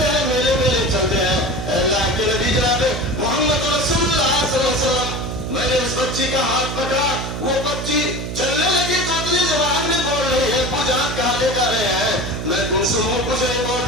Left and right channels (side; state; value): right; noise; hum, 5 dB below the sound